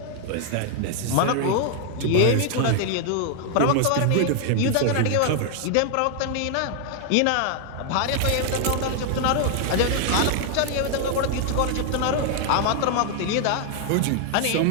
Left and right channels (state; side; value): different; both; correlation 0.00